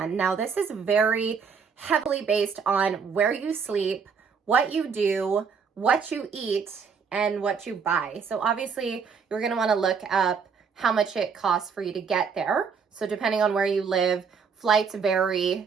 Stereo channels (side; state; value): left; quieter; 6.0 dB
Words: Now, this is very heavily based on where you sleep, what you do, what you eat, and what you buy. So obviously, you're going to want to look up how much it costs for you to get there. So depending on where you live, flights